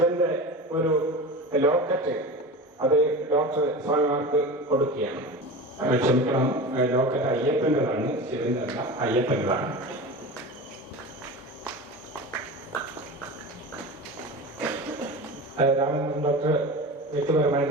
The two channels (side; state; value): both; normal; correlation 0.30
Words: ഒരു ലോക്കറ്റ് അത് ഡോക്ടർ സ്വാമിമാർക്ക് കൊടുക്കുകയാണ്. ക്ഷമിക്കണം, ലോക്കറ്റ് അയ്യപ്പൻ്റെതാണ്, ശിവന്റെ അല്ല, അയ്യപ്പൻ്റെതാണ്. രാമചന്ദ്രൻ ഡോക്ടർ വ്യക്തിപരമായി